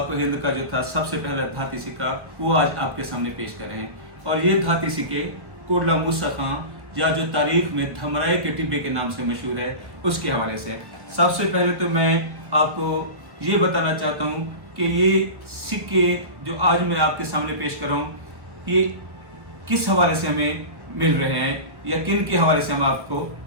हिंद का जो था सबसे पहला धाती सिक्का, वो आज आपके सामने पेश कर रहे हैं। और ये धाती सिक्के कोटला मूसा खां, या जो तारीख में धमराए के टिब्बे के नाम से मशहूर है, उसके हवाले से। सबसे पहले तो मैं आपको ये बताना चाहता हूँ कि ये सिक्के जो आज मैं आपके सामने पेश कर रहा हूँ, ये किस हवाले से हमें मिल रहे हैं या किन के हवाले से हम आपको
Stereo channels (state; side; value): late; left; 1.1 ms